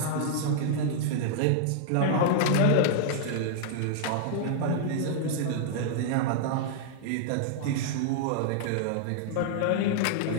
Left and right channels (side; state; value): both; different; correlation -0.01